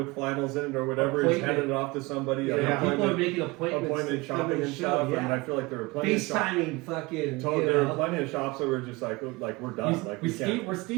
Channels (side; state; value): left; quieter; 23.9 dB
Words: flannels in it or whatever. He's handing it off to somebody. People are making appointments shopping and stuff. Yeah. And I feel like there were plenty FaceTiming fucking. There were plenty of shops that were just like we're done. We're